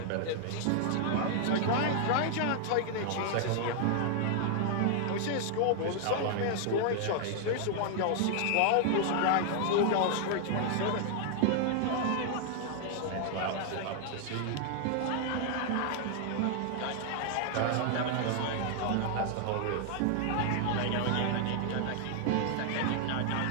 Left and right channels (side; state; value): both; different; correlation 0.00